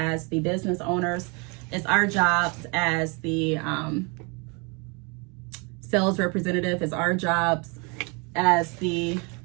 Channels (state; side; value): quieter; left; 31.4 dB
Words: the business owners, it's our jobs as the sales representative, it's our jobs as the,